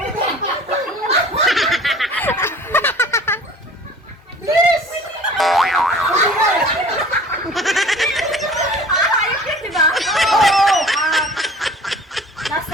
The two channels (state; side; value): normal; both; correlation 0.46